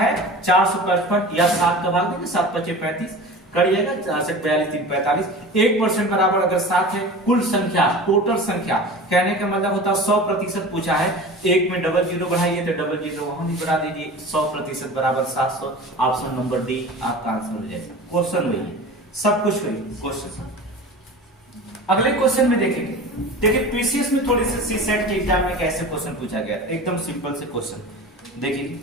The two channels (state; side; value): normal; both; correlation 0.35